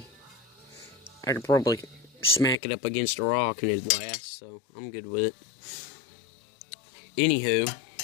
I could probably smack it up against a rock and it'd last, so I'm good with it. Anywho,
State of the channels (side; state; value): right; drops out; at 2.6 s